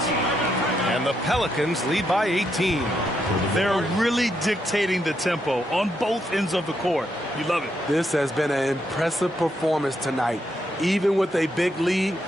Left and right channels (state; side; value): normal; both; correlation 0.79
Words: And the Pelicans lead by 18. They're really dictating the tempo on both ends of the court. You love it. This has been an impressive performance tonight. Even with a big lead,